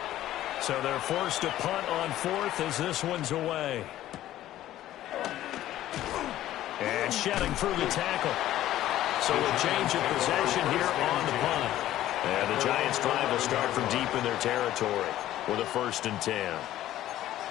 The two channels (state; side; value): quieter; right; 13.6 dB